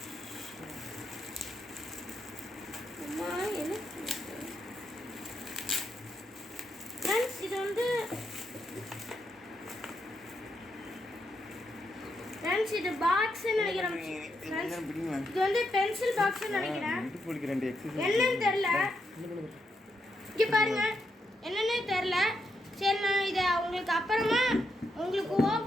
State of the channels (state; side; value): normal; both; correlation 0.81